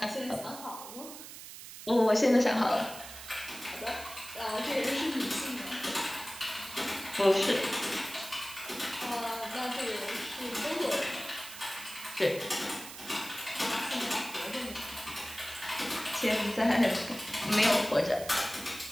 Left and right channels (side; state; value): right; noise; hiss, 13 dB below the sound